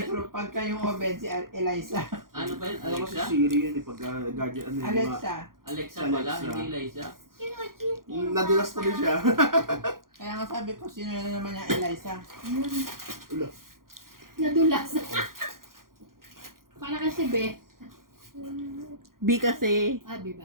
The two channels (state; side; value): late; left; 0.91 ms